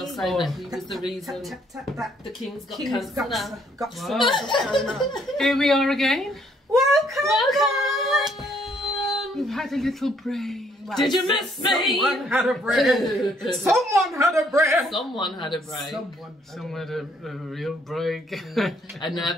say that he was the reason the King's got cancer now. Here we are again. Welcome! We've had a little break. Well, did you miss me? Someone had a break. Someone had a break. Someone had a break. Someone had a real break. A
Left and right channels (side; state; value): both; normal; correlation 0.67